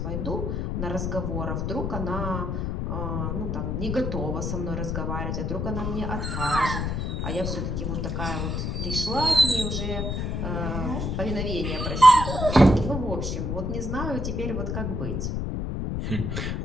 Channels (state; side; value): noise; left; rumble, 1 dB below the sound